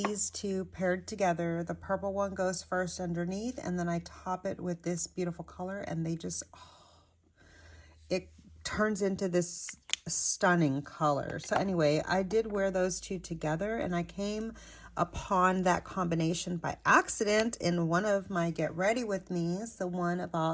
two paired together. The purple one goes first underneath, and then I top it with this beautiful color, and they just, it turns into this stunning color. So anyway, I did wear those two together, and I came upon that combination by accident in one of my Get Ready With Me's, the one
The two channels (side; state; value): both; identical; correlation 1.00